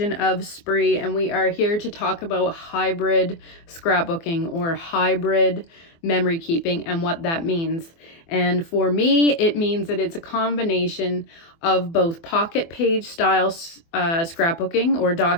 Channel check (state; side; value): late; right; 24 ms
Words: of Spree, and we are here to talk about hybrid scrapbooking or hybrid memory keeping and what that means. And for me, it means that it's a combination of both pocket page style scrapbooking or